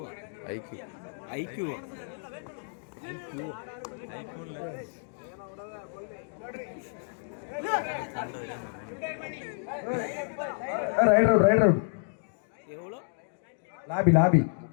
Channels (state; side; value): silent; right; digital silence